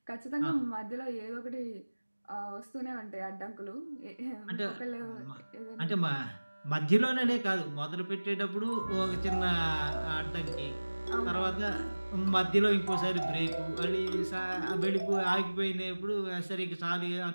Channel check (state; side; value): inverted; both; correlation -1.00